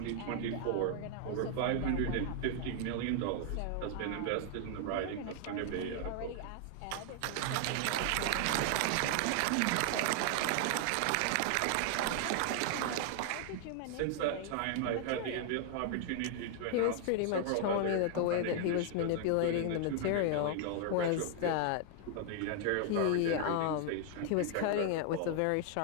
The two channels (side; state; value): both; different; correlation 0.00